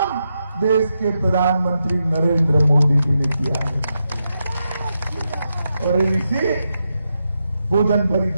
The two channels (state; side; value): inverted; both; correlation -0.85